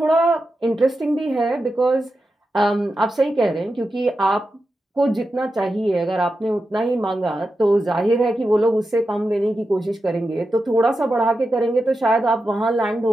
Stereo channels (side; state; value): both; normal; correlation 0.90